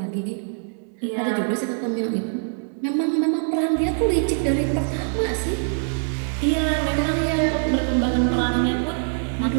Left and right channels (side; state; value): left; silent; digital silence